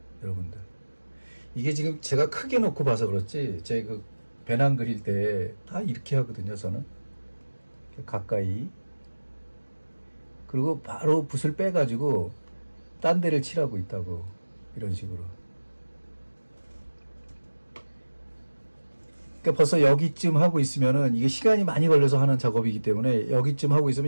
여러분들, 이게 지금 제가 크게 놓고 봐서 그렇지, 제 그 배낭 그릴 때 다 이렇게 하거든요, 저는. 가까이. 그리고 바로 붓을 빼가지고 딴 데를 칠하고 있다고, 이런 식으로. 그러니까 벌써 여기쯤 하고 있으면은, 이게 시간이 많이 걸려서 하는 작업이기 때문에 여기쯤 하고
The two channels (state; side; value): inverted; both; correlation -1.00